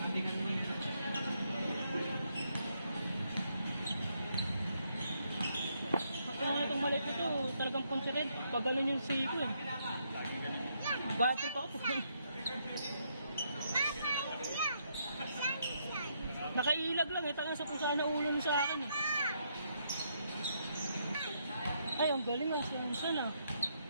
Ako nga itong maliit ito, talagang considered. Pag ganun yung siko eh. Batrip ako. Nakailag lang eh, tangang sa kung saan naulong sa akin eh. Ay, ang galing ang siyansan ah.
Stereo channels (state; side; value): inverted; both; correlation -0.76